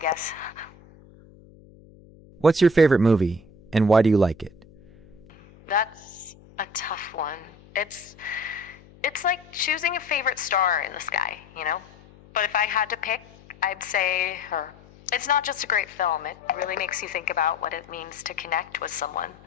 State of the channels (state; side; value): noise; left; hum, 24 dB below the sound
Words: What's your favorite movie, and why do you like it? That's a tough one. It's like choosing a favorite star in the sky, you know? But if I had to pick, I'd say her. It's not just a great film, it really makes you think about what it means to connect with someone,